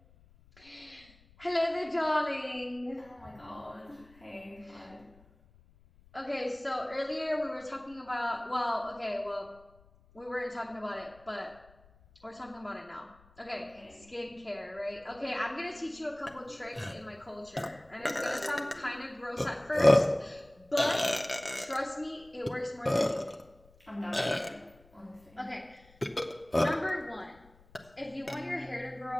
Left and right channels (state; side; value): noise; left; rumble, 27 dB below the sound